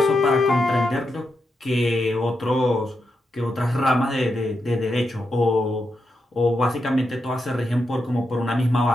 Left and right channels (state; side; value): normal; both; correlation 0.85